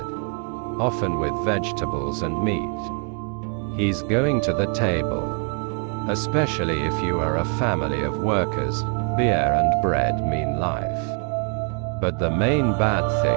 often with vegetables and meat. He's going to the table. Especially if you are a family of workers, beer and bread mean life. But the main bad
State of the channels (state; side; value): quieter; left; 37.5 dB